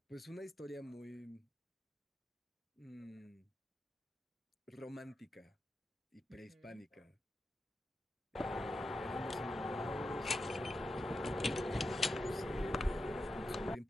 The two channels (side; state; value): both; normal; correlation 0.89